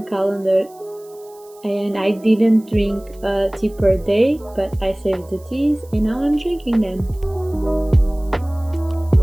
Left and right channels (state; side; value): noise; right; hiss, 27 dB below the sound